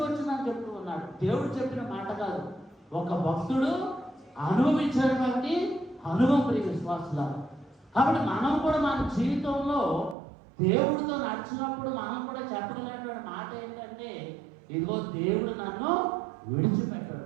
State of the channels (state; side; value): drops out; left; at 10.2 s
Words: వచ్చిందని చెప్తూ ఉన్నాడు. దేవుడు చెప్పిన మాట కాదు, ఒక భక్తుడు అనుభవించినటువంటి అనుభవం ప్రియ విశ్వాసులారా. కాబట్టి మనం కూడా మన జీవితంలో దేవుడితో నడిచినప్పుడు మనం కూడా చెప్పగలిగినటువంటి మాట ఏంటంటే, ఇదిగో దేవుడు నన్ను